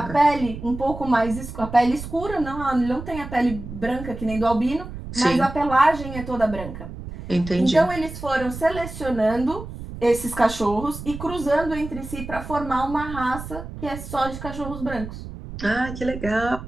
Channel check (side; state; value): right; noise; rumble, 10 dB below the sound